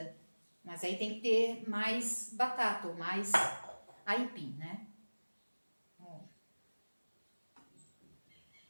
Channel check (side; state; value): both; inverted; correlation -1.00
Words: Mas aí tem que ter mais batata ou mais aipim, né?